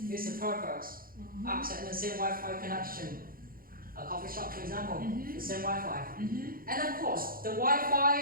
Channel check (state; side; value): late; left; 0.42 ms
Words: Here's the purpose. Access the same Wi-Fi connection. A coffee shop, for example, the same Wi-Fi. And of course, the